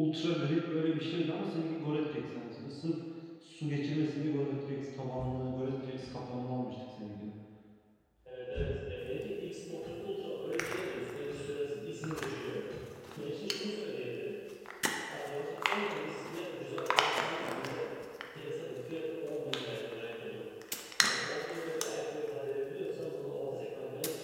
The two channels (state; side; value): identical; both; correlation 1.00